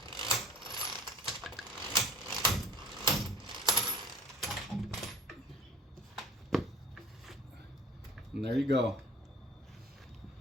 And there you go.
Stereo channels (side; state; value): both; normal; correlation 0.48